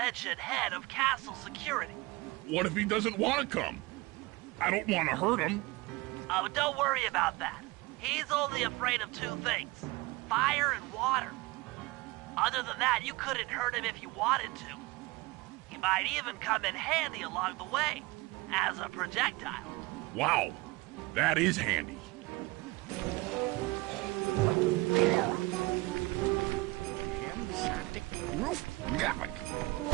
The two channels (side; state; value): left; quieter; 22.4 dB